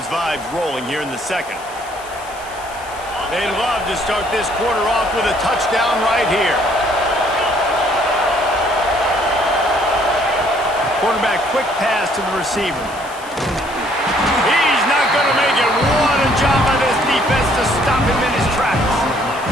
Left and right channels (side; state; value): left; noise; hiss, 20 dB below the sound